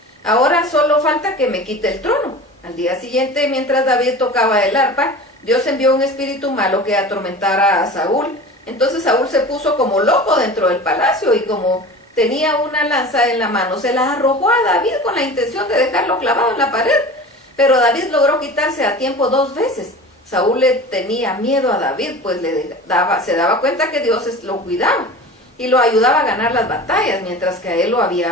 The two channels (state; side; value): normal; both; correlation 0.36